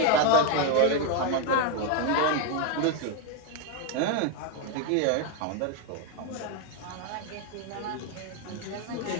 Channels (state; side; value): different; both; correlation 0.01